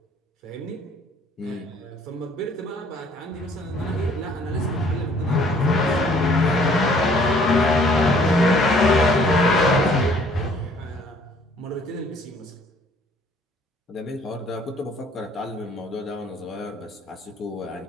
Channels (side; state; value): both; normal; correlation 0.59